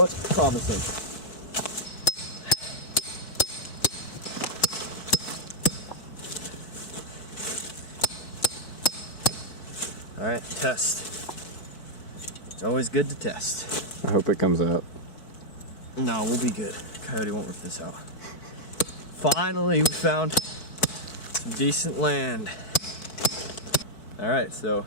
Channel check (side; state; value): right; late; 4.6 ms